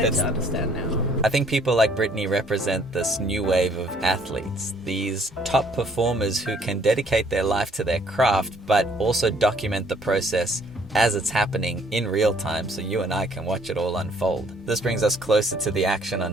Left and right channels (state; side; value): normal; both; correlation 0.62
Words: to understand now. I think people like Brittany represent this new wave of athletes, these top performers who can dedicate their life to their craft, but also document the process as it's happening in real time, so you and I can watch it all unfold. This brings us closer to the action on